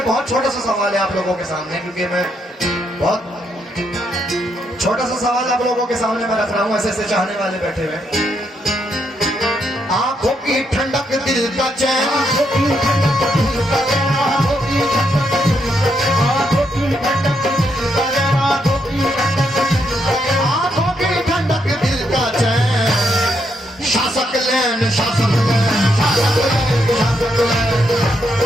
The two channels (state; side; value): normal; both; correlation 0.78